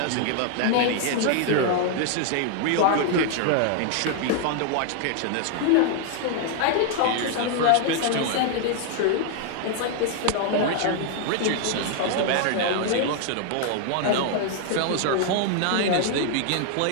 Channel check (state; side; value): different; both; correlation 0.00